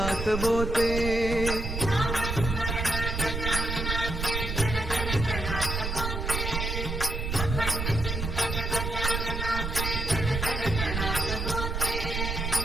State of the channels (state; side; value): noise; right; rumble, 3 dB below the sound